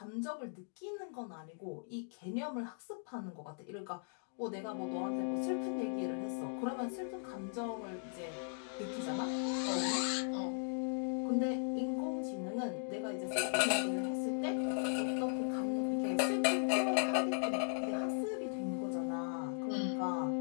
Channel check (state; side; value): silent; right; digital silence